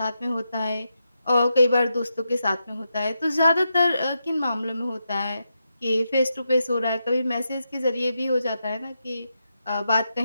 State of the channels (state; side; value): inverted; both; correlation -0.86